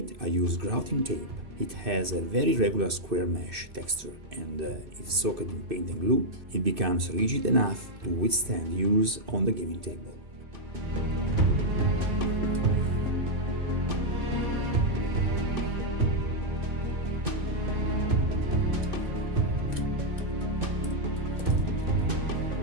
I use grouting tape. It has a very regular square mesh texture, and if soaked in paint and glue, it becomes rigid enough to withstand use on the gaming table.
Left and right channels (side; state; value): left; late; 2.5 ms